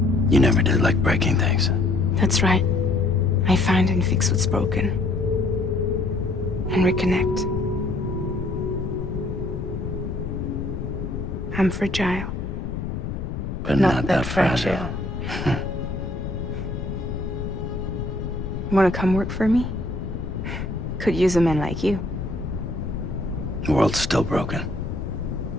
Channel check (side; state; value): left; noise; rumble, 5 dB below the sound